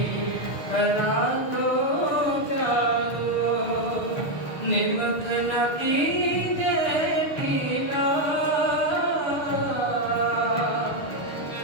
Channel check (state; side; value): late; right; 6.5 ms